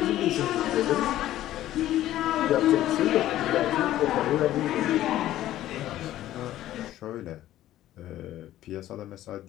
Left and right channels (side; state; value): right; quieter; 13.7 dB